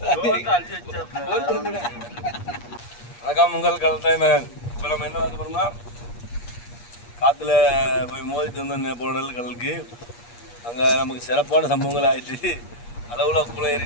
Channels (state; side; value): late; right; 8.4 ms